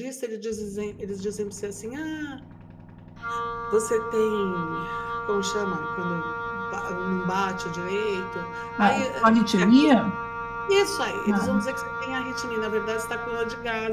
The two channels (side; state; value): both; identical; correlation 1.00